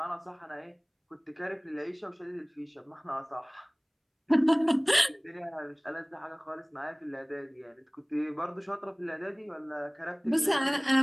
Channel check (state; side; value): identical; both; correlation 1.00